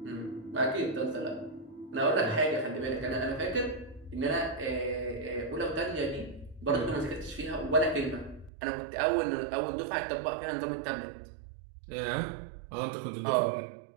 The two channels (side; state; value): left; drops out; at 8.5 s